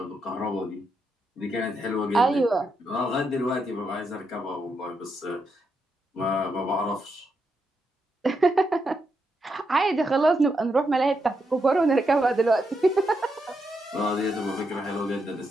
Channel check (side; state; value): both; normal; correlation 0.82